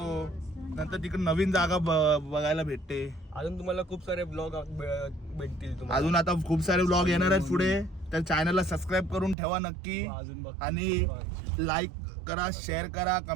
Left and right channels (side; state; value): left; drops out; at 9.3 s